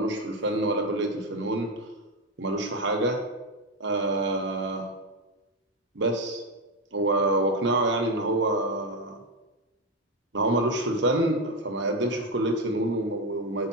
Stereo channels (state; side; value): normal; both; correlation 0.10